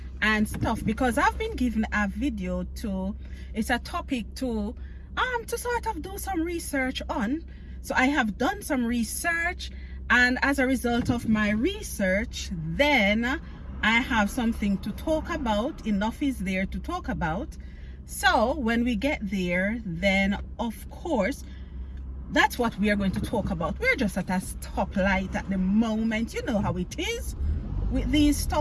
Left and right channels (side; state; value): both; identical; correlation 1.00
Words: and stuff, because I've been given a video to, it's a topic to sort of do some research on. So I have done some research, and as a result of my research, then I have something to talk about. Enough is there to talk about. So when we get there, then of course that's what we are going to talk about. We're just at a stoplight at the moment. You know how it is with these